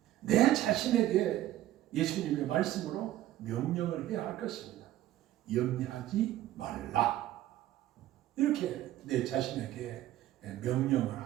내 자신에게 예수님의 말씀으로 명령을 해야 할 것입니다. 염려하지 말라. 이렇게 내 자신에게 명령을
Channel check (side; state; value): left; quieter; 13.9 dB